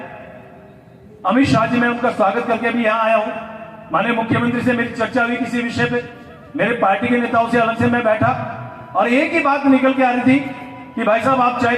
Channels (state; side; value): identical; both; correlation 1.00